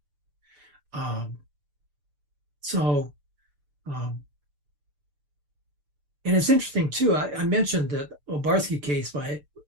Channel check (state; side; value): late; left; 6.8 ms